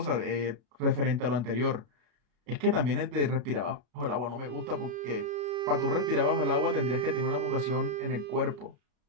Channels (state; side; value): late; left; 33 ms